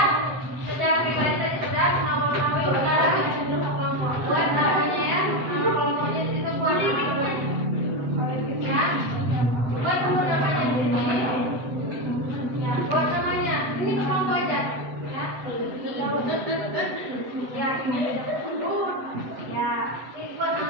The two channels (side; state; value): left; late; 7.9 ms